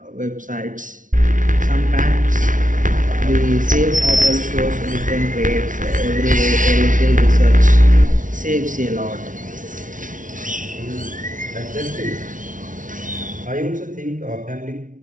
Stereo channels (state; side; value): late; left; 0.38 ms